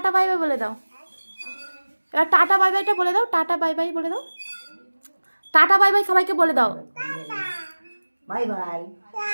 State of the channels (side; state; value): both; inverted; correlation -1.00